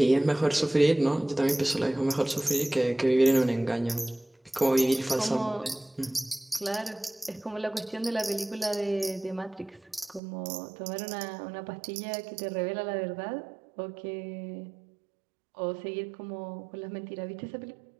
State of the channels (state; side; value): drops out; left; at 10.2 s